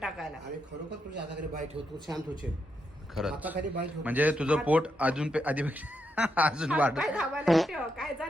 आणि खरोखर तुझ्या हाताखाली बाय ठेवतो शांत होशील. खरंच हाताखाली बाय ठेवतो म्हणजे तुझं पोट अजून आधीपेक्षा अजून वाढ. पाय दाबायला ठेव काय जा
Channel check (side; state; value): both; normal; correlation 0.82